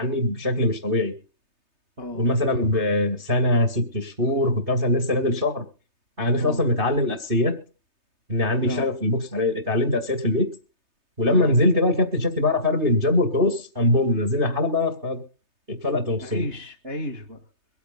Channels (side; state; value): left; late; 3.3 ms